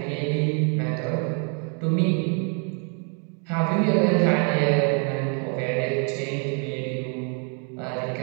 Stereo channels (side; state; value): left; quieter; 39.4 dB